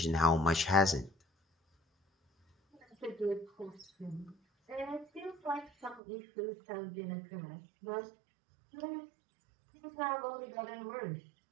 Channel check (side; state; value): left; drops out; at 6.0 s